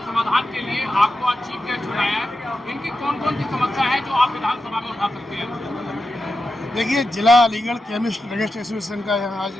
समाधान के लिए आपको आज चीफ गेस्ट चुनाया है। इनकी कौन कौन सी समस्या है जो आप विधानसभा में उठा सकते हैं? देखिए, जिला अलीगढ़ केमिस्ट ड्रगिस्ट एसोसिएशन का यहाँ आज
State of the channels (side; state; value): both; normal; correlation 0.90